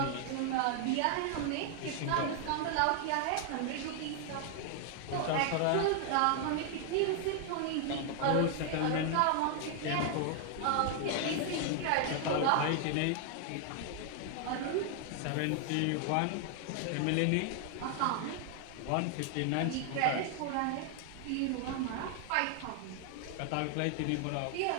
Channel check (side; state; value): both; different; correlation 0.00